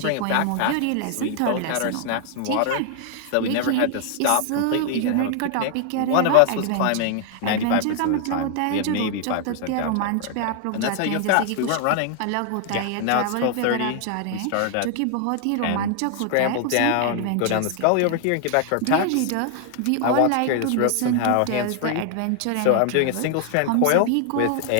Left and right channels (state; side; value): different; both; correlation 0.00